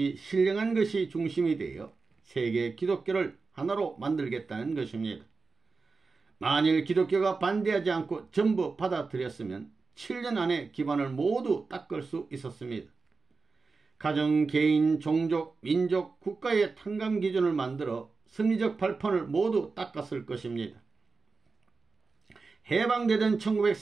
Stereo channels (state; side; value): quieter; left; 4.3 dB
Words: 신령한 것이 중심이 되어 세계 기독교를 하나로 만들겠다는 것입니다. 만일 기독교가 반대하지 않고 전부 받아들였으면 7년 안에 기반을 모두 닦을 수 있었습니다. 가정, 개인, 종족, 민족, 국가의 탕감 기준을 만들어 승리적 발판을 모두 닦았을 것입니다. 해방되던